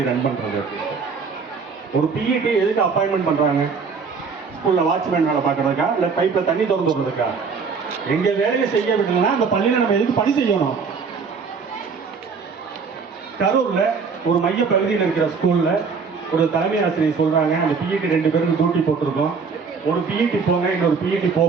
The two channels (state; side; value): quieter; left; 5.3 dB